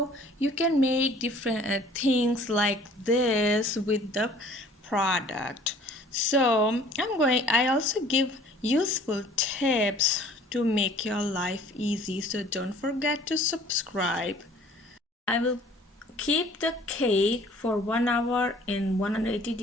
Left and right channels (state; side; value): normal; both; correlation 0.52